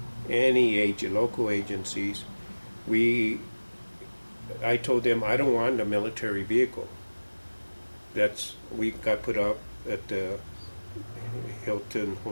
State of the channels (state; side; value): inverted; both; correlation -1.00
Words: any local agencies. I told them I don't want a military vehicle. We got put up at the Hilton